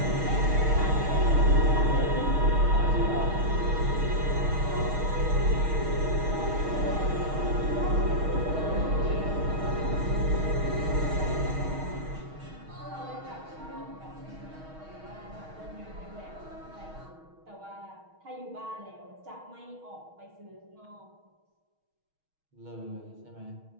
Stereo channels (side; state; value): left; late; 6.4 ms